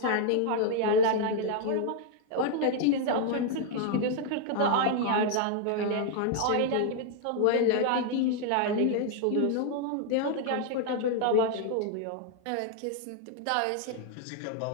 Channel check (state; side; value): different; both; correlation 0.00